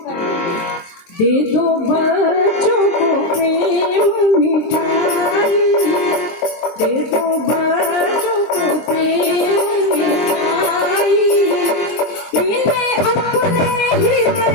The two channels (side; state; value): right; late; 23 ms